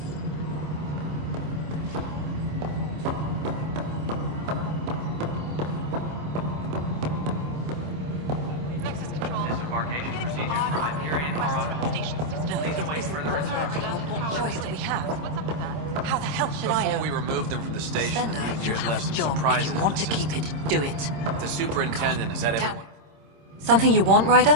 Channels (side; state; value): left; late; 26 ms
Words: Disembarkation procedures for Hyperion are on hold. Please await further instructions. What choice do we have? How the hell should I know? Before we removed them from the station, Spender, the you engineers have left a some job. surprises. If you want to keep it, do it. The superintendent, is that everyone? Something you want, Ryder?